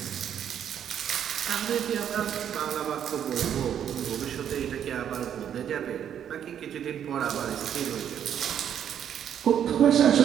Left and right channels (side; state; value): left; quieter; 9.3 dB